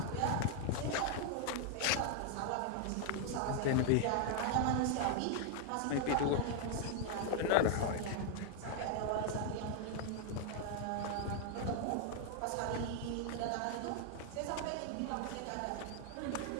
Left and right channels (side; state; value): both; different; correlation 0.00